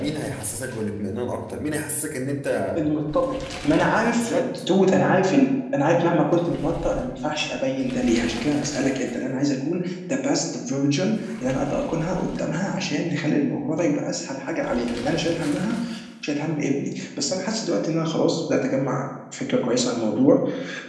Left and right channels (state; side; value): identical; both; correlation 1.00